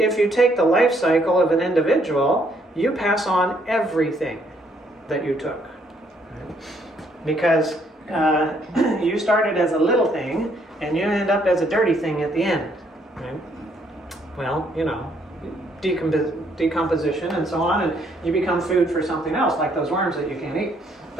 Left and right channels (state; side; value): normal; both; correlation 0.69